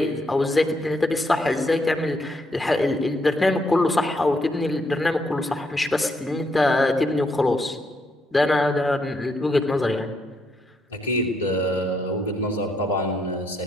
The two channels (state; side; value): normal; both; correlation 0.76